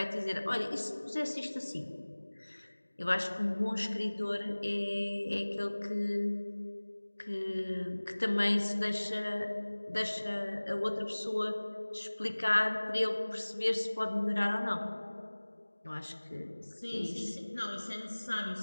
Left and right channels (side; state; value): both; inverted; correlation -1.00